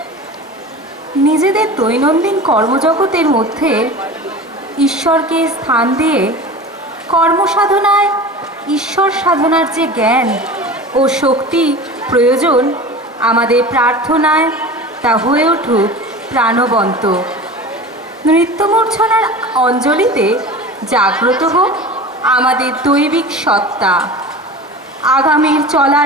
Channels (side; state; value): both; normal; correlation 0.34